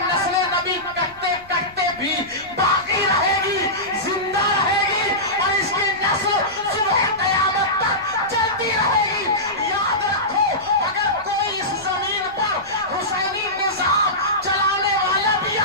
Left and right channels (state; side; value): noise; left; rumble, 25 dB below the sound